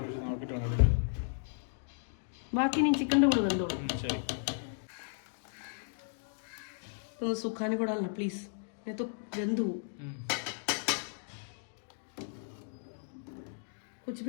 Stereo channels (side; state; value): right; silent; digital silence